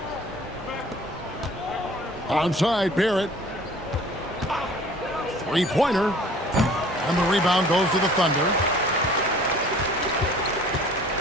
Outside, Barrett. Three-pointer. And the rebound goes to the Thunder.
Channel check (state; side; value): normal; both; correlation 0.50